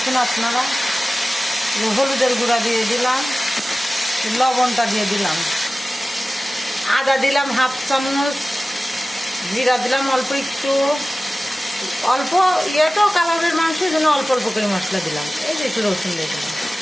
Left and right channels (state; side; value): normal; both; correlation 0.96